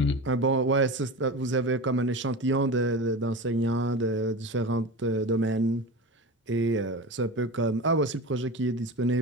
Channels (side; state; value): both; normal; correlation 0.28